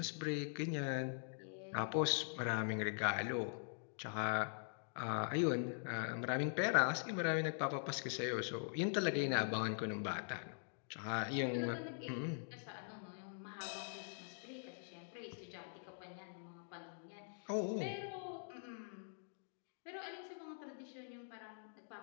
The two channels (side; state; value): right; silent; digital silence